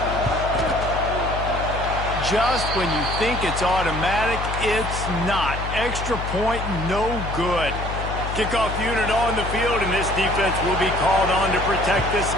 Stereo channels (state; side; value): noise; left; hum, 5 dB below the sound